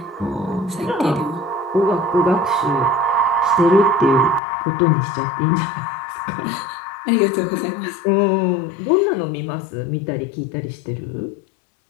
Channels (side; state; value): right; drops out; at 4.4 s